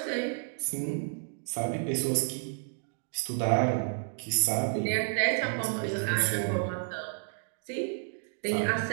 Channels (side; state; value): left; silent; 57 dB below the other